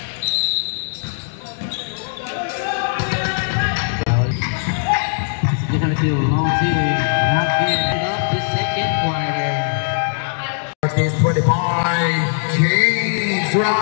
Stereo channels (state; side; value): silent; right; digital silence